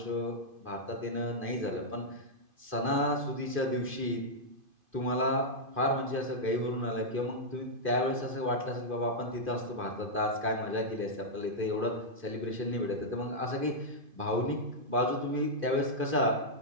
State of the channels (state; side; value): late; left; 2.5 ms